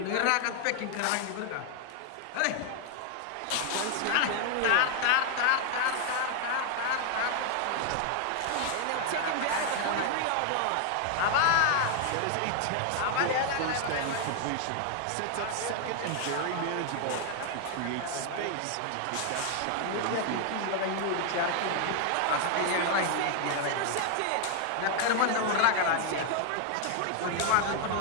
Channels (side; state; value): both; different; correlation 0.00